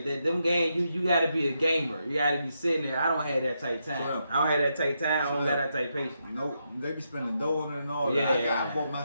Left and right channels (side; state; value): both; inverted; correlation -0.82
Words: That them games, you gotta be a gamer. You gotta be sitting there. I don't have that type time. I don't have that type time. I don't have that type patience. Nope. They be spending dough on it and all that. I bought